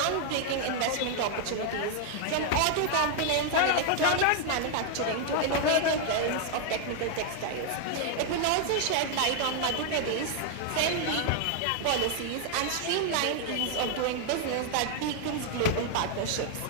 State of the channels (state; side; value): different; both; correlation 0.00